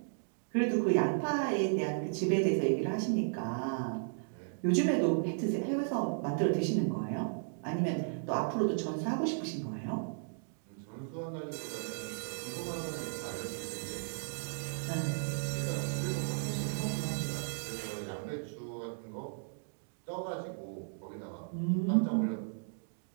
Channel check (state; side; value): silent; left; digital silence